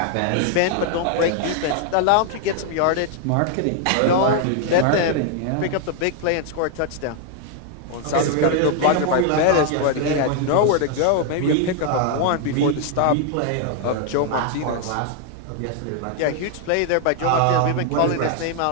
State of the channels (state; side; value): different; both; correlation 0.00